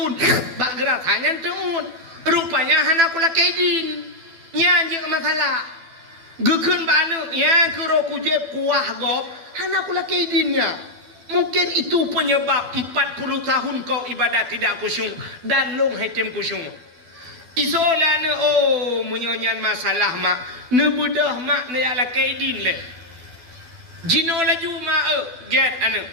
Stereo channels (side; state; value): left; late; 12 ms